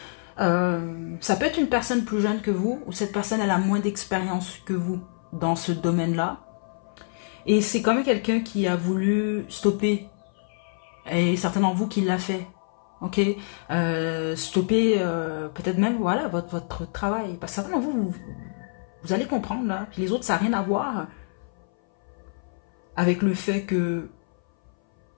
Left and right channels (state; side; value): silent; right; 59 dB below the other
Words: Ça peut être une personne plus jeune que vous, ou cette personne, elle a moins d'expérience que vous dans ce domaine-là. Et c'est quand même quelqu'un qui a voulu stopper. Et certains d'entre vous qui l'a fait. Ok, stopper peut-être même voilà votre travail. Parce que certains d'entre vous, vous allez comprendre là. Puis les autres, ça n'a rien à voir avec le fait que